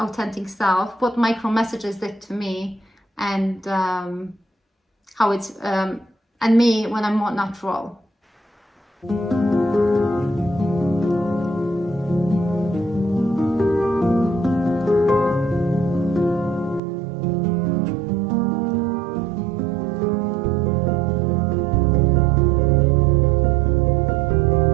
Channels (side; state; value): left; drops out; at 16.8 s